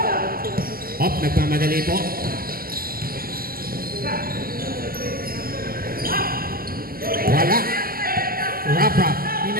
Hop, nagmamadali po. Wala. Rap-Rap.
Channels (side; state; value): left; late; 0.42 ms